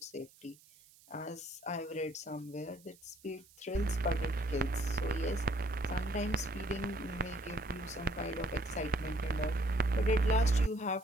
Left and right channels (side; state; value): right; noise; hiss, 26 dB below the sound